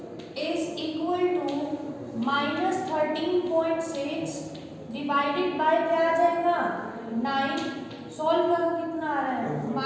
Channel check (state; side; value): identical; both; correlation 1.00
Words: is equal to minus 13.6 divided by क्या आ जाएगा 9। सॉल्व करो कितना आ रहा है